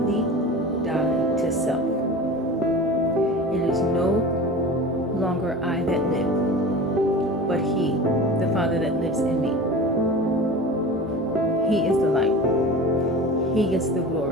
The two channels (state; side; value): normal; both; correlation 0.34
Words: die to self. It is no longer I that live, but He, the Father that lives in me. He is the light. He gets the